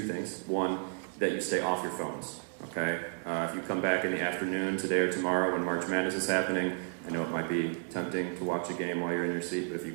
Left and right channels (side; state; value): left; silent; 56 dB below the other